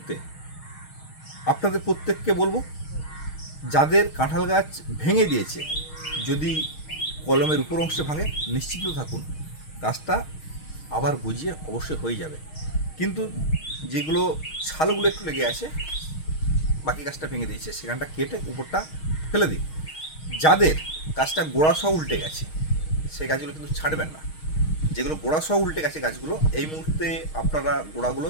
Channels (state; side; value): late; right; 6.4 ms